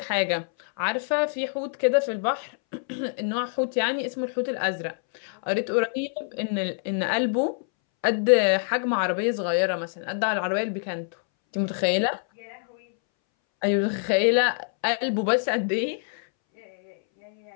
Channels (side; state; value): right; silent; 61 dB below the other